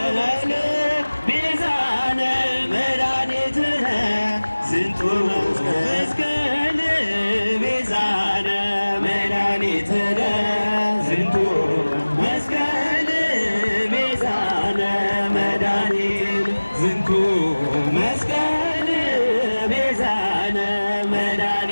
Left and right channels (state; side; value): inverted; both; correlation -1.00